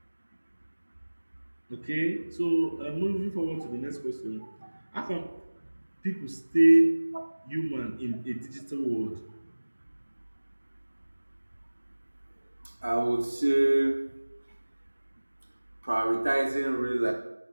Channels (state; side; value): inverted; both; correlation -1.00